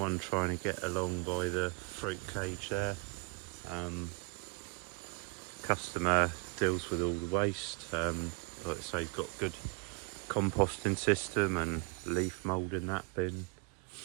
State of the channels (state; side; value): quieter; left; 32.6 dB